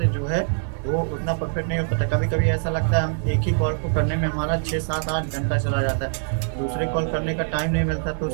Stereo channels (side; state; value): left; silent; digital silence